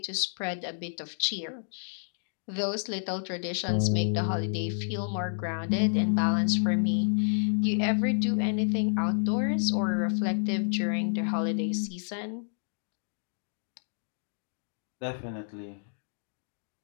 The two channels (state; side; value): silent; right; digital silence